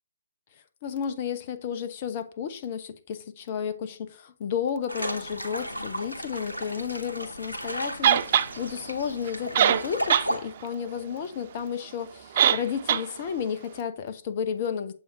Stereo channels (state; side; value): inverted; both; correlation -0.52